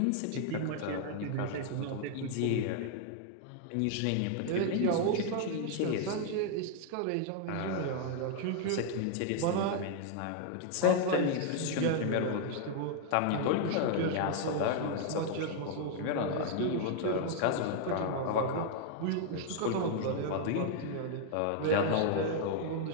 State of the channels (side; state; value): both; different; correlation 0.00